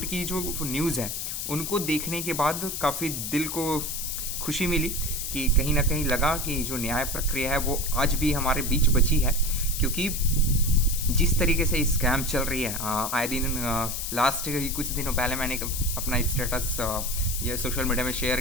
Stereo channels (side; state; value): left; noise; hiss, 4 dB below the sound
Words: की जो न्यूज़ है उनको देखने के बाद काफ़ी दिल को खुशी मिली कि कहीं ना कहीं लगा कि जो न्याय प्रक्रिया है वो आज भी हमारे बीच बची है। क्योंकि जिस तरीके से स्कैम चल रही है आए दिन, लास्ट कुछ दिनों पहले मैंने अपना स्टेटस ये सोशल मीडिया में शेयर